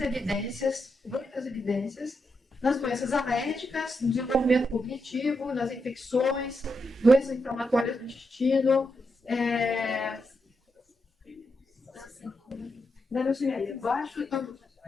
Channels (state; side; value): normal; both; correlation 0.84